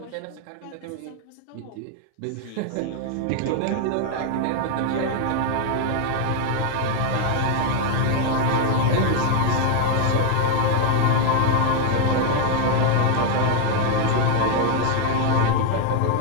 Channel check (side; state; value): both; different; correlation 0.01